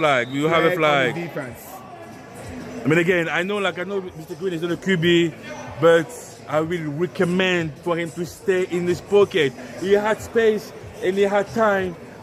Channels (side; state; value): both; identical; correlation 1.00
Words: We have a flag. On the defense. I mean, again, I know Mr. Green is not a QB, but I will recommend for him to stay in his pocket. He had space and he had time